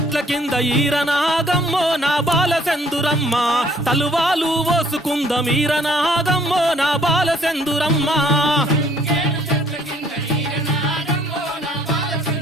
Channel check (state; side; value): normal; both; correlation 0.61